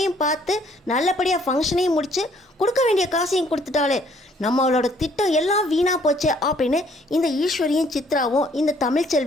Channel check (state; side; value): normal; both; correlation 0.63